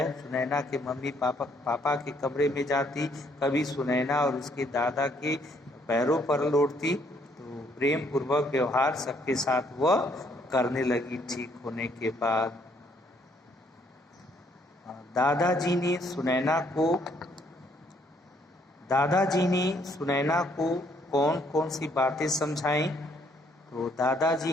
सुनैना के मम्मी पापा के कमरे में जाती, कभी सुनैना और उसके दादा के पैरों पर लौटती। तो प्रेम पूर्वक व्यवहार सबके साथ वह करने लगी ठीक होने के बाद। दादाजी ने सुनैना को कौन कौन सी बातें समझाईं? तो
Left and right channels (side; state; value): both; normal; correlation 0.67